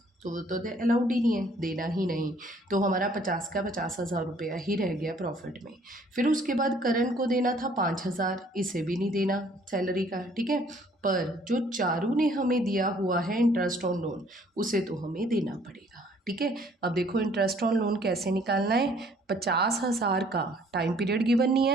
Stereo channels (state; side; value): normal; both; correlation 0.60